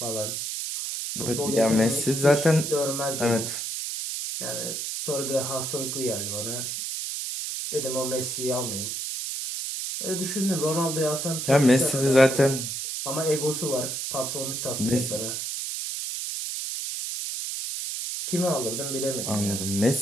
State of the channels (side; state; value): right; noise; hiss, 4 dB below the sound